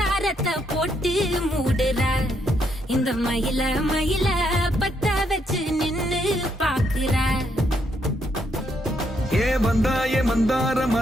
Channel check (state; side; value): normal; both; correlation 0.75